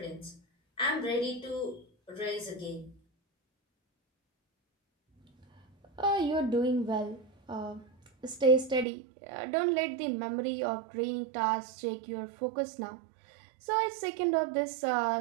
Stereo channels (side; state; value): left; drops out; at 8.8 s